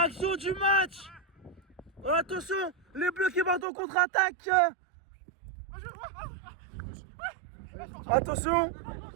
du match. Oh, attention, les bleus qui vont en contre-attaque. Attention,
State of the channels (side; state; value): left; drops out; at 3.7 s